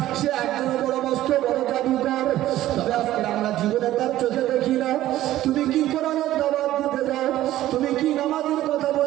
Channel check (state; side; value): quieter; left; 14.3 dB